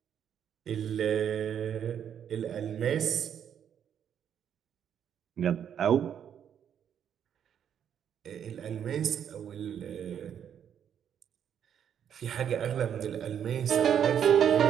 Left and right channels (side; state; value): left; quieter; 8.8 dB